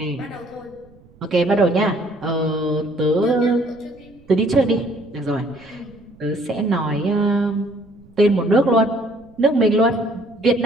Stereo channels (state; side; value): noise; right; rumble, 27 dB below the sound